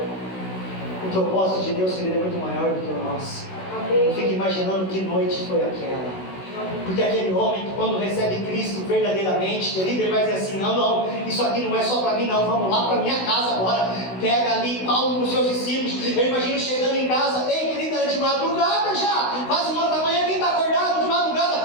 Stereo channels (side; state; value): right; late; 16 ms